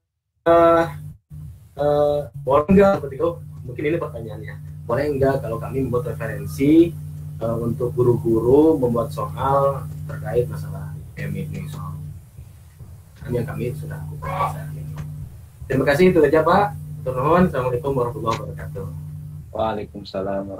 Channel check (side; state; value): both; identical; correlation 1.00